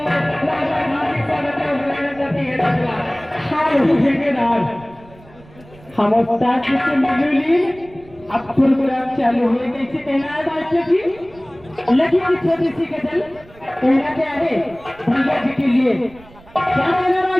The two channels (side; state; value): right; noise; rumble, 24 dB below the sound